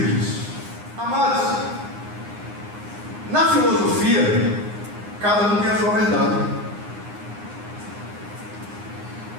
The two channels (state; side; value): late; left; 9.7 ms